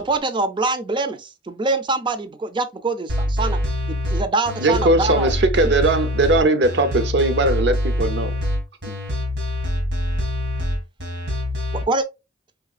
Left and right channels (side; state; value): both; normal; correlation 0.32